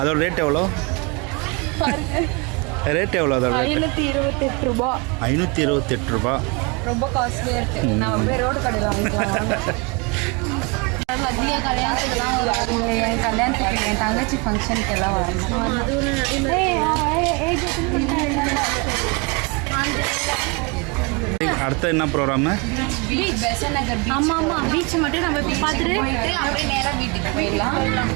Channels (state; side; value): quieter; left; 29.7 dB